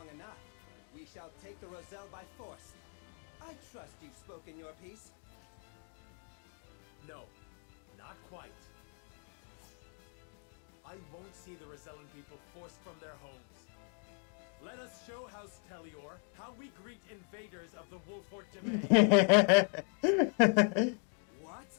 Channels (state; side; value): quieter; right; 39.2 dB